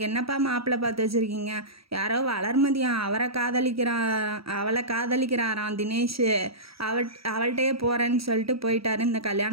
என்னப்பா மாப்பிள்ளை பார்த்து வச்சுருக்கீங்க, யாரோ வளர்மதியா, அவளை காதலிக்கிறாராம் தினேஷ், அவள்கிட்டயே போகிறேன்னு சொல்லிட்டு போயிட்டாரு, இந்த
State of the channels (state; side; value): late; left; 0.76 ms